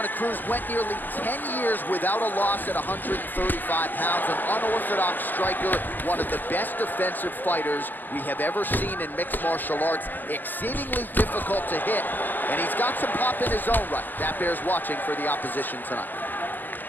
Cruz. Went nearly 10 years without a loss at 135 pounds. An unorthodox striker, one of the best defensive fighters we have ever seen in mixed martial arts. Exceedingly difficult to hit, and he's got some pop in his own right. That bears watching for the opposition tonight.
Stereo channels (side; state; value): right; late; 0.087 ms